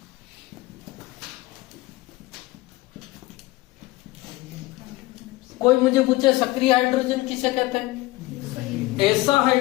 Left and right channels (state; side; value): quieter; right; 19.7 dB